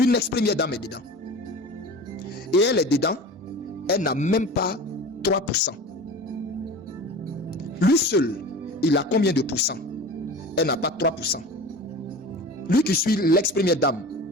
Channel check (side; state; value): both; normal; correlation 0.36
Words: Une ex-première dame est dedans. Et elle est dedans, elle n'a même pas 3%. Lui seul, il a combien de pourcents? Elle n'a pas 3%. Lui qui suit l'ex-première dame,